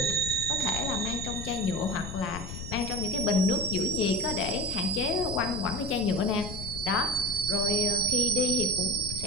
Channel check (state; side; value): noise; left; rumble, 9 dB below the sound